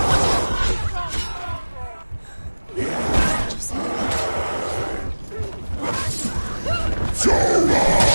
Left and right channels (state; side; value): inverted; both; correlation -1.00